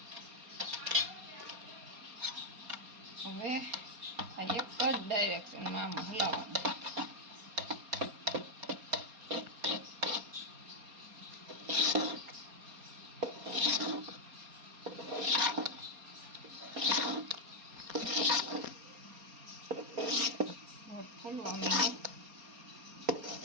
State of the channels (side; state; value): left; late; 4.3 ms